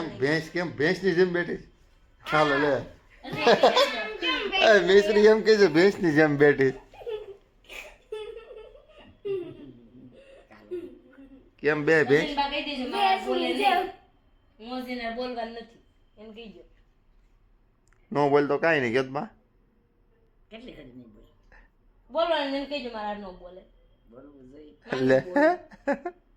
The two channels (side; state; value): both; identical; correlation 1.00